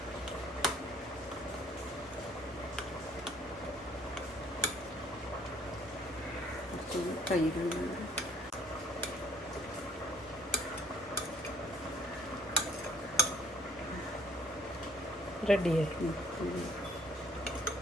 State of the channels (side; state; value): both; normal; correlation 0.60